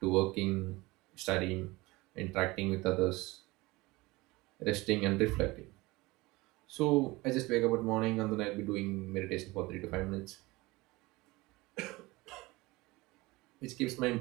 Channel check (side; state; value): left; quieter; 21.7 dB